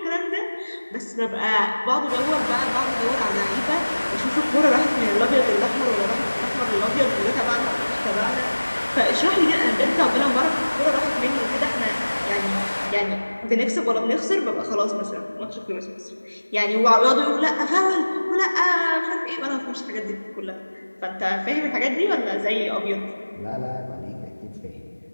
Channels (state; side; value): inverted; both; correlation -1.00